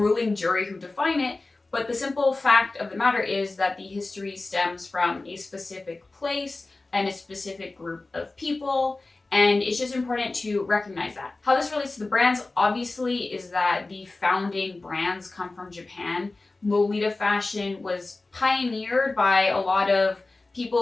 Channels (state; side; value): quieter; right; 3.3 dB